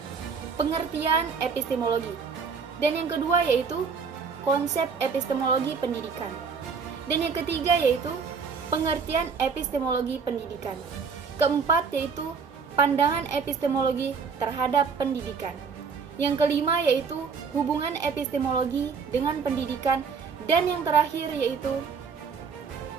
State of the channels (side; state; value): left; quieter; 5.7 dB